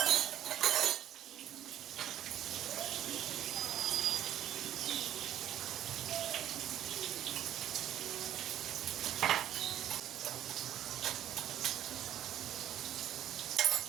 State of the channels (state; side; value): quieter; left; 11.6 dB